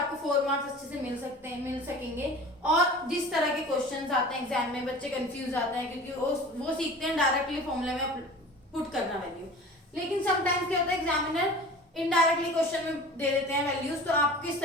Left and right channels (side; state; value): both; normal; correlation 0.39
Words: 4 मार्क्स अच्छे से मिल सकेंगे। और जिस तरह के क्वेश्चंस आते हैं एग्जाम में, बच्चे कंफ्यूज आते हैं क्योंकि वो सीखते हैं डायरेक्टली फॉर्मूले में पुट करना वैल्यू, लेकिन समटाइम्स क्या होता है एग्जामिनर इनडायरेक्टली क्वेश्चन में दे देते हैं वैल्यूज, तो आप किस